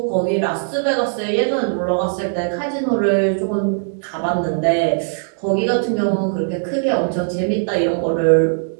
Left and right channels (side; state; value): left; silent; digital silence